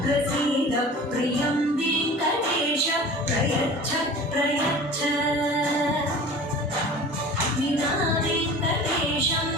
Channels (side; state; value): both; normal; correlation 0.40